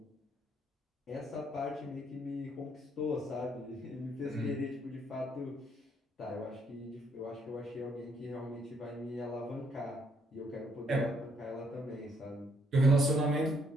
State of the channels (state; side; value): normal; both; correlation 0.70